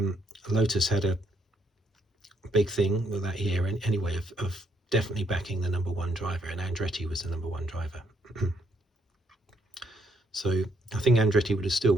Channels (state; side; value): normal; both; correlation 0.73